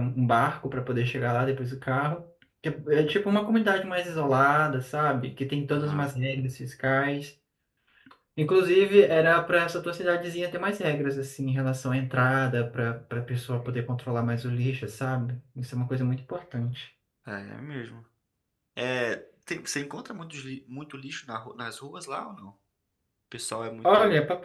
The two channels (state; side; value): identical; both; correlation 1.00